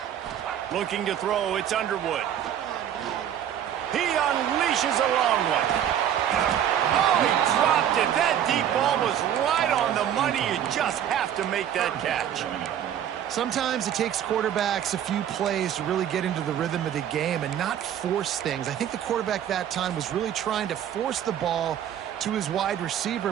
Looking to throw. It's Underwood. He unleashes a long one. Oh, he dropped it. That deep ball was right on the money. You just have to make that catch. Sometimes it takes quarterbacks a few plays to really get into the rhythm of the game and not force things. I think the quarterback that time was really trying to force the ball to his wide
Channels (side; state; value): left; quieter; 10.1 dB